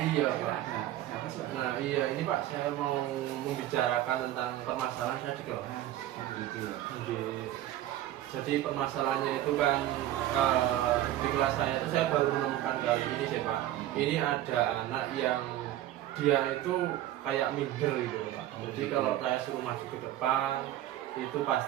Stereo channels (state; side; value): quieter; left; 13.5 dB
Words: Kira Pak. ada apa sih Pak? Nah iya ini Pak, saya mau membicarakan tentang permasalahan saya di kelas. Oh gitu ya. Jadi permasalahannya itu kan di kelas saya itu saya baru menemukan kali ini sih Pak. Ini ada anak yang dia itu kayak minder gitu Pak. Jadi kalau saya suruh maju ke depan itu